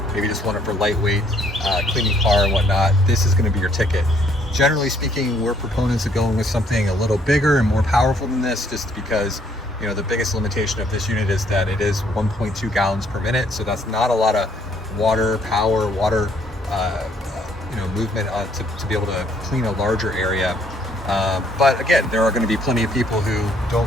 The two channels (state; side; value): normal; both; correlation 0.66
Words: maybe just want it for lightweight, cleaning car and whatnot, this is going to be your ticket. Generally speaking, we're proponents of going with something a little bigger and more powerful than this, just because, you know, the biggest limitation of this unit is that it is 1.2 gallons per minute. So that's not a lot of water movement to be able to clean a larger area. But again, there are going to be plenty of people who